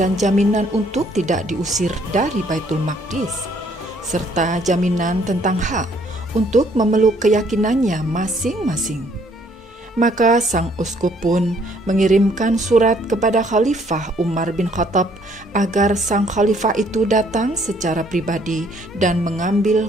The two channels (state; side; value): normal; both; correlation 0.64